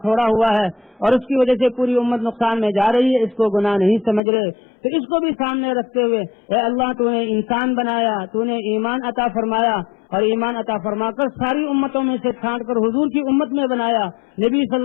چھوڑا ہوا ہے اور اس کی وجہ سے پوری امت نقصان میں جا رہی ہے، اس کو گناہ نہیں سمجھ رہے۔ تو اس کو بھی سامنے رکھتے ہوئے اے اللہ تو نے انسان بنایا، تو نے ایمان عطا فرمایا اور ایمان عطا فرما کر ساری امتوں میں سے چھانٹ کر حضور کی امت میں بنایا، نبی صلی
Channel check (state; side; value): drops out; right; at 4.2 s